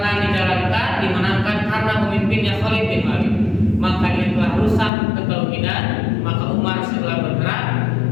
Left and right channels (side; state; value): right; drops out; at 4.9 s